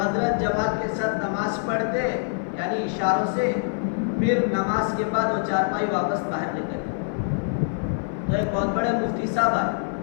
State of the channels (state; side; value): silent; right; 58 dB below the other